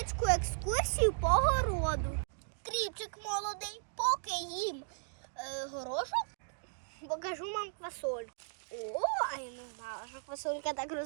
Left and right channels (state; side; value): silent; left; digital silence